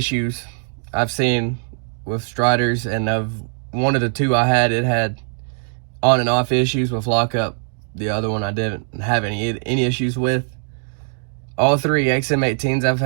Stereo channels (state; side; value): silent; left; 58 dB below the other